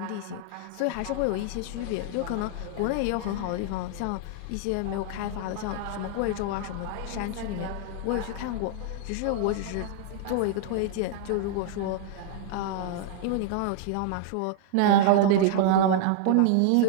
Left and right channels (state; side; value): different; both; correlation -0.01